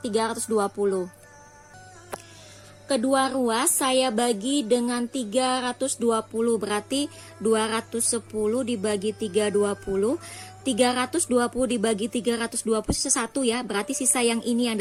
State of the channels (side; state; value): both; identical; correlation 1.00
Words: Kedua ruas saya bagi dengan 320, berarti 210 dibagi 320. 320 dibagi 320 sisa 1 ya, berarti sisa yang ini yang